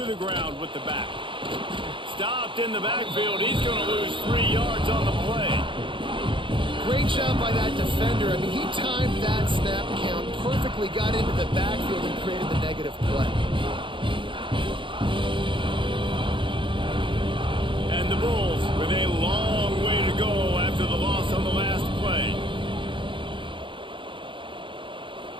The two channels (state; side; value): late; left; 0.24 ms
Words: the ground with the back. Stopped in the backfield. He's going to lose 3 yards on the play. Great job by that defender. I mean, he timed that snap count perfectly, got into the backfield and created the negative play. And the Bulls with a long way to go after the loss on the last play.